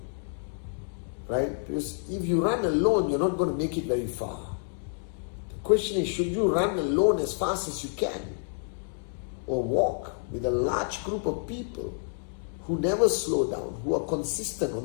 Right? Because if you run alone, you're not going to make it very far. The question is, should you run alone as fast as you can? Or walk with a large group of people who never slow down, who are consistent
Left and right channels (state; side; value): silent; right; 59 dB below the other